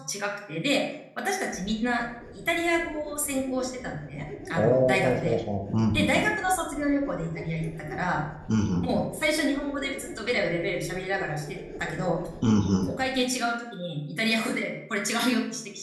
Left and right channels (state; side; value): identical; both; correlation 1.00